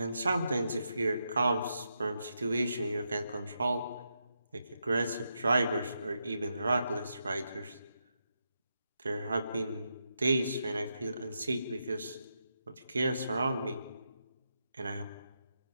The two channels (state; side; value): inverted; both; correlation -0.84